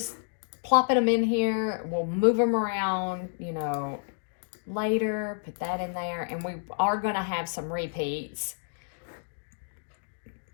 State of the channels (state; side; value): silent; right; digital silence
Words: plopping them in here. We'll move them around, you know, later. Put that in there. And we are going to have some repeats.